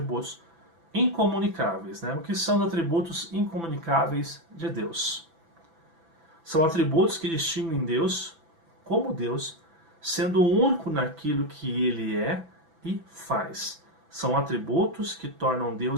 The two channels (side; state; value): left; late; 6.0 ms